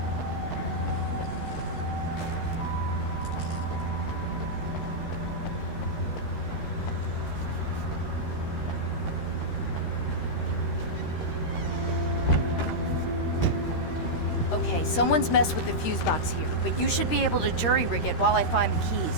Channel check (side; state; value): right; late; 13 ms